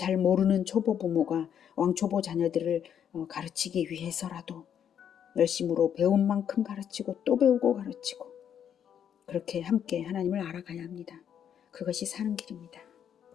모르는 초보 부모가 왕초보 자녀들을 가르치기 위해서라도 열심으로 배운 만큼 가르치고 또 배우고 가르치고 그렇게 함께 하나님을 알아가야 합니다. 그것이 사는 길입니다.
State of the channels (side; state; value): right; quieter; 8.9 dB